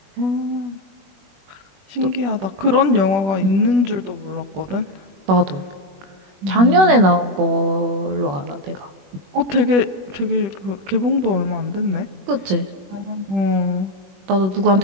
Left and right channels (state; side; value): late; left; 21 ms